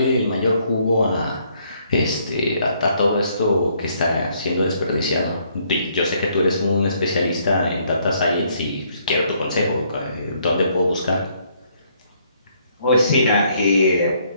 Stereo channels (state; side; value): inverted; both; correlation -0.68